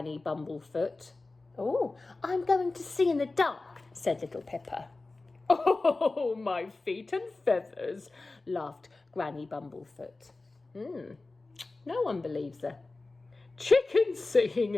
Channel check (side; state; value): right; quieter; 3.4 dB